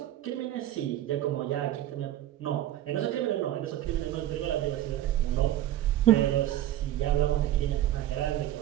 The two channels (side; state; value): left; quieter; 12.9 dB